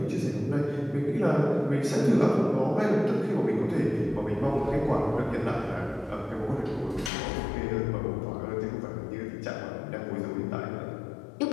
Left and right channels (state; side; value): drops out; right; at 7.1 s